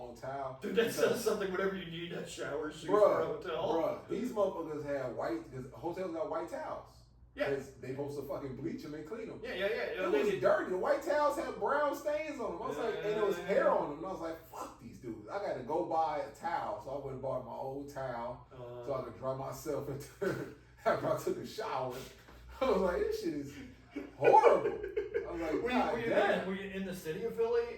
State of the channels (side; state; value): both; identical; correlation 1.00